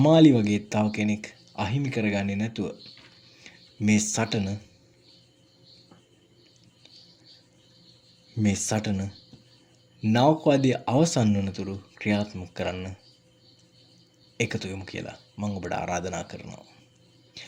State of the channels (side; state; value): both; identical; correlation 1.00